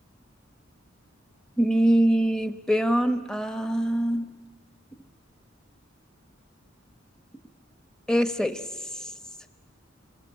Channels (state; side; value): normal; both; correlation 0.95